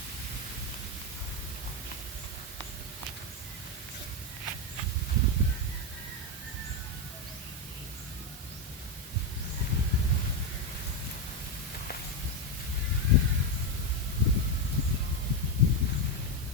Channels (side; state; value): both; normal; correlation 0.07